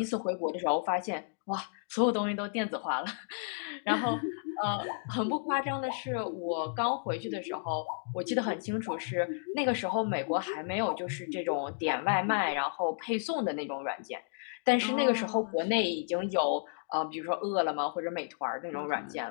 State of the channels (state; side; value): silent; right; digital silence